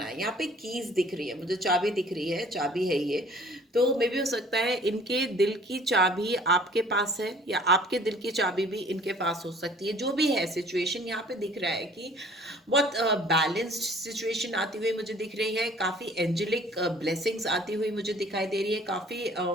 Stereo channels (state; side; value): normal; both; correlation 0.53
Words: है। यहाँ पे कीज दिख रही है मुझे, चाबी दिख रही है, चाबी है ये। तो मे भी हो सकता है इनके दिल की चाबी आपके पास है या आपके दिल की चाबी भी इनके पास हो सकती है। जो भी है सिचुएशन, यहाँ पे दिख रहा है कि बहुत बैलेंस्ड सिचुएशन आती हुई मुझे दिख रही है, काफ़ी एंजेलिक ब्लेसिंग्स आती हुई मुझे दिखाई दे रही है, काफ़ी